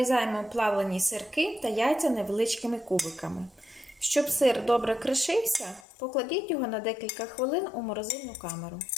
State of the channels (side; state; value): right; drops out; at 5.9 s